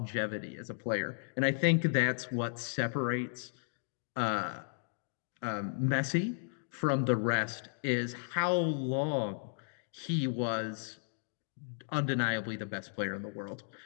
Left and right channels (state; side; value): silent; right; digital silence